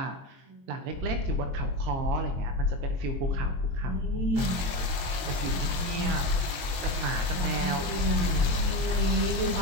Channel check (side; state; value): left; late; 22 ms